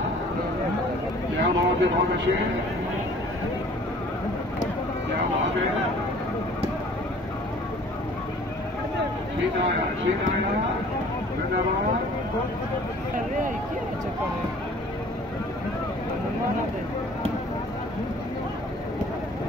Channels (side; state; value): both; normal; correlation 0.51